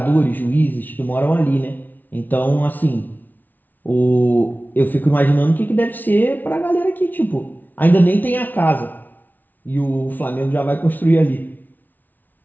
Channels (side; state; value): right; late; 0.084 ms